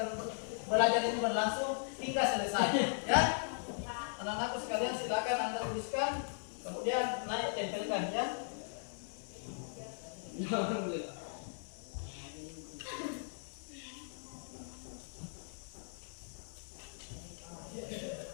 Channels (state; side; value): silent; right; 52 dB below the other